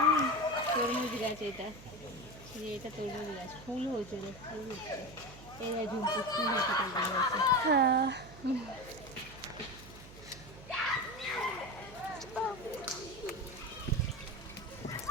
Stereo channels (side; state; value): right; noise; hum, 17 dB below the sound